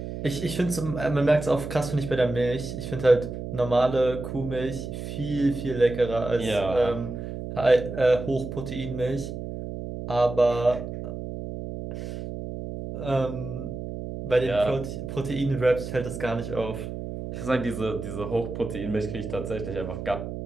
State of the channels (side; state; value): right; noise; hum, 7 dB below the sound